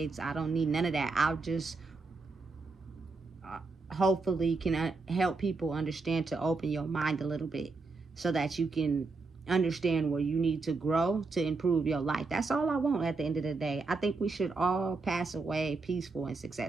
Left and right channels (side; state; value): left; quieter; 3.9 dB